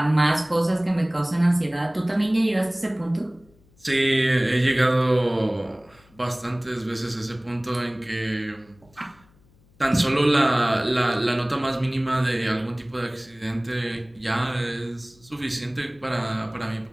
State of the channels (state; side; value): noise; left; hum, 30 dB below the sound